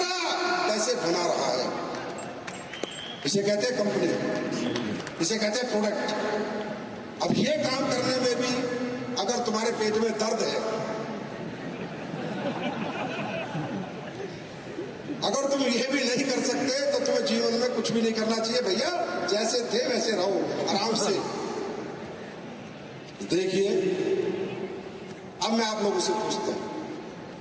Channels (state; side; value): identical; both; correlation 1.00